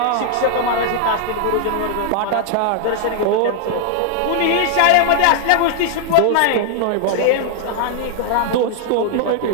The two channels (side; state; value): both; different; correlation 0.00